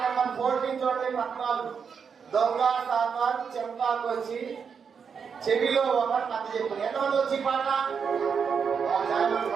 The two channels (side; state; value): left; quieter; 6.4 dB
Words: నెంబర్ 14 చూడండి. 14 దొంగ సామాన్ చెంపాకు వచ్చి చెవిలో ఒక కథ చెప్పు. ఎంతమంది వచ్చి పాట?